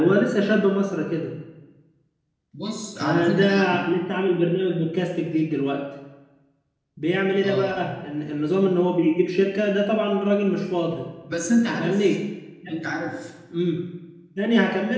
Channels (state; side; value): identical; both; correlation 1.00